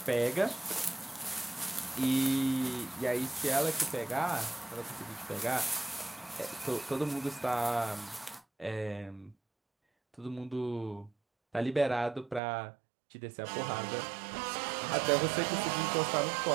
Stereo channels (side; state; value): left; drops out; at 12.4 s